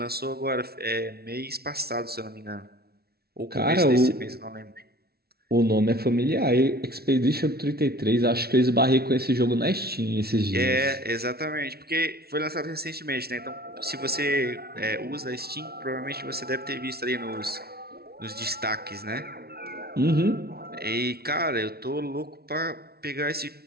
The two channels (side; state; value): left; late; 0.45 ms